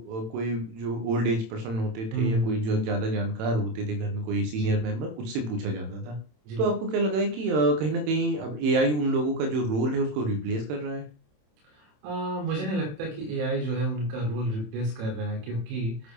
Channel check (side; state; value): left; late; 27 ms